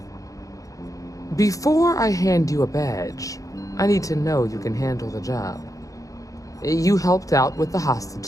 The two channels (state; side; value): late; right; 0.16 ms